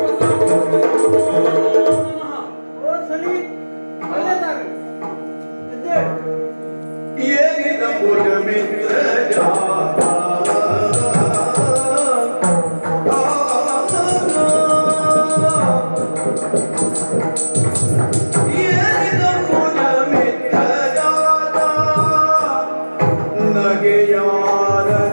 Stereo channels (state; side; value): inverted; both; correlation -1.00